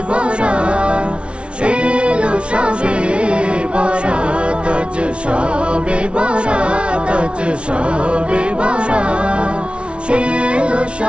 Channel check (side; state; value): left; late; 0.059 ms